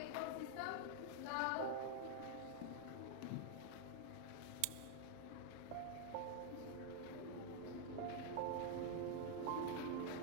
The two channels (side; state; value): both; different; correlation 0.00